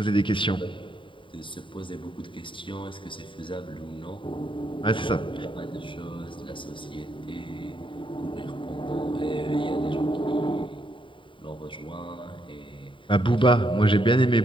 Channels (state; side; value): late; right; 0.24 ms